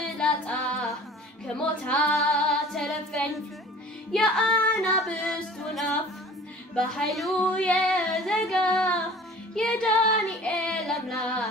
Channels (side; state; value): both; normal; correlation 0.45